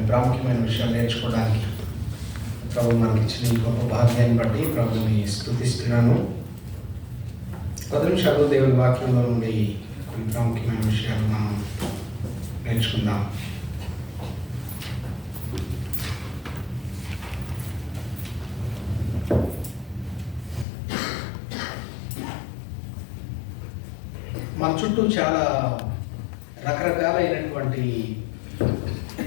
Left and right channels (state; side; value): drops out; right; at 20.7 s